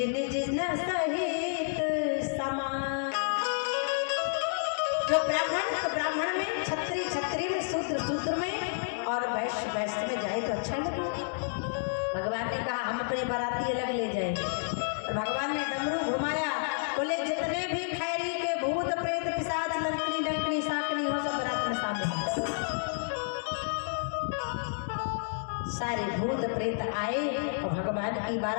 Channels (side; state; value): right; silent; digital silence